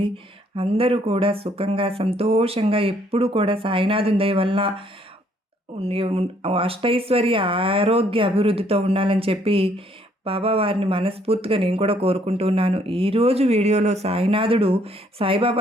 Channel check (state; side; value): normal; both; correlation 0.66